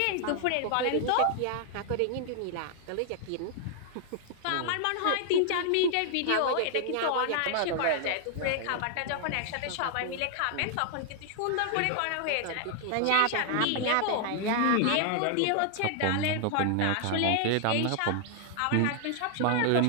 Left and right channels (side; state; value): both; different; correlation 0.00